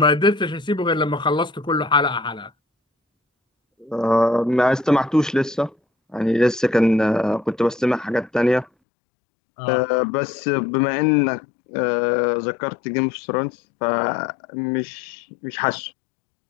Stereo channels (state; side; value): drops out; right; at 8.7 s